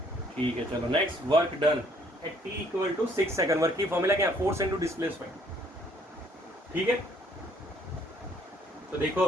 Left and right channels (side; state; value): both; normal; correlation 0.63